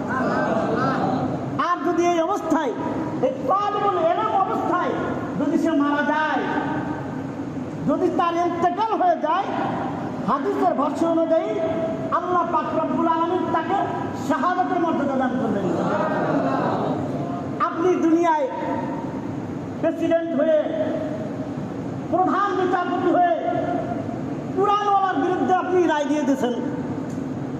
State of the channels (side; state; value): both; identical; correlation 1.00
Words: আর যদি এই অবস্থায়, এই তালিবুল ইলম অবস্থায় যদি সে মারা যায়, যদি তার ইন্তেকাল হয়ে যায়, হাদিসের ভাষ্য অনুযায়ী আল্লাহ পাক রব্বুল আলামিন তাকে শাহাদাতের মর্যাদা দান করবেন। আপনি দুনিয়ায় প্রেসিডেন্ট হয়ে, প্রধান বিচারপতি হয়ে কুরআনওয়ালার বিরুদ্ধে আপনি রায় দিয়ে দিয়েছেন,